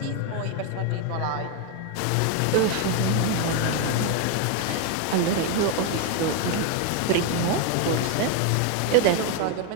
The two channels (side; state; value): both; different; correlation 0.01